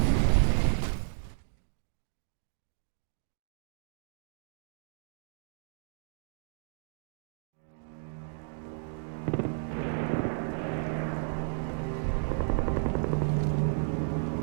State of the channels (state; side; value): silent; left; digital silence